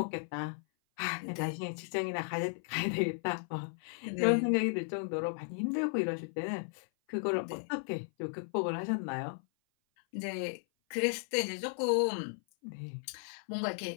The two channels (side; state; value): right; silent; 54 dB below the other